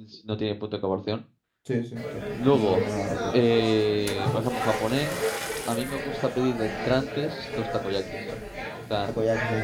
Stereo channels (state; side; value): identical; both; correlation 1.00